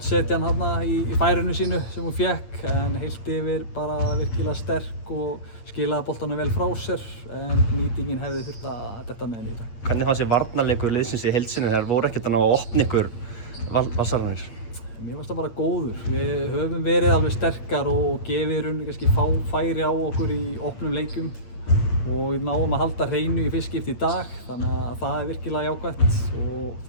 setja hann þarna í færinu sínu sem hún fékk en heilt yfir bara virkilega sterk og skilaði boltanum vel frá sér en nýtingin hefði þurft að detta með henni í dag. Hvernig fannst þér varnarleikur liðsins í heild sinni? Þær voru ekkert að ná að opna ykkur Vassararnir? Mér fannst það bara góður. Við höfum verið alveg sterkar og gefið í rauninni kannski færi á okkur í opnum leikum og við náum að halda hreinu í fyrst skipti í dag þannig að það er virkilega jákvætt og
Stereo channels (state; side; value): late; right; 8.7 ms